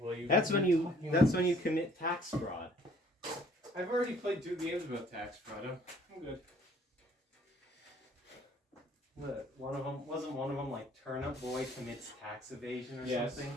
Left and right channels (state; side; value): normal; both; correlation 0.58